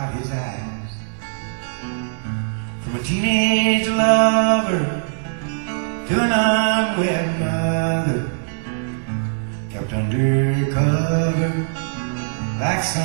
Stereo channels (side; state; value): left; silent; 64 dB below the other